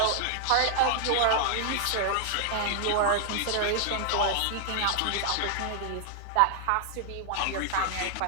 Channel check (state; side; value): different; both; correlation 0.00